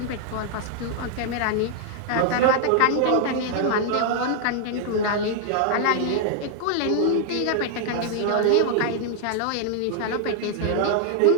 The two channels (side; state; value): both; different; correlation 0.00